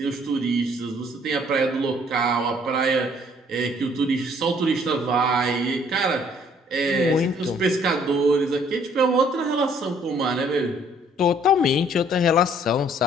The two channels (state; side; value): normal; both; correlation 0.61